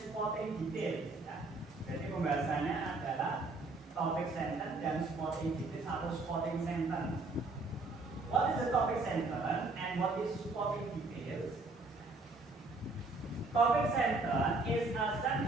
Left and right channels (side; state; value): left; quieter; 3.3 dB